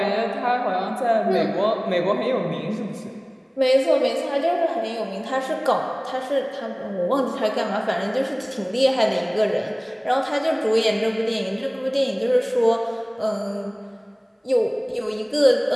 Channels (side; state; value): both; identical; correlation 1.00